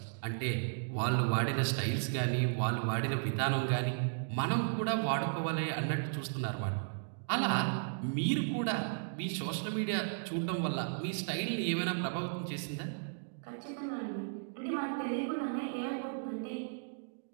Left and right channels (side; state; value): left; silent; digital silence